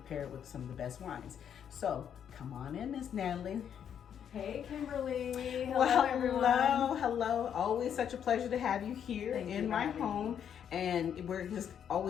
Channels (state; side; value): quieter; right; 8.6 dB